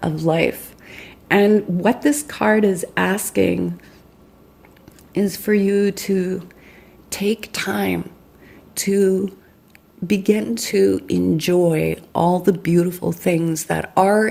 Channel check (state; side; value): identical; both; correlation 1.00